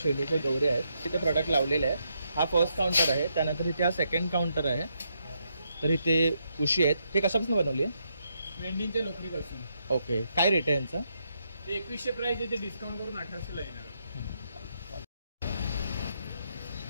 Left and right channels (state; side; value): inverted; both; correlation -0.78